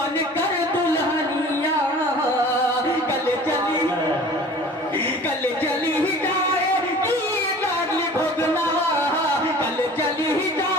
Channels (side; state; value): both; normal; correlation 0.44